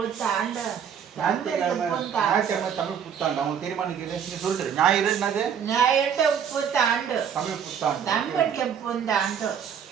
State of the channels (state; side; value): quieter; left; 7.9 dB